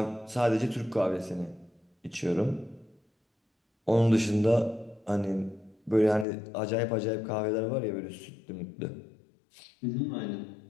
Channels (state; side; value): drops out; right; at 6.2 s